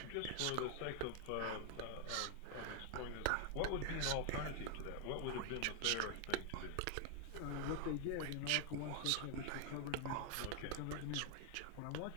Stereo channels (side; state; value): both; different; correlation 0.00